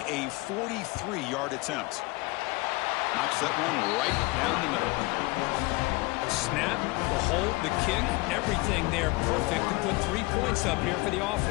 a 43-yard attempt. Knocks that one right down the middle. Snap, the hold, the kick, everything there perfect to put 3 points up here for the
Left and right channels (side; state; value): right; quieter; 23.5 dB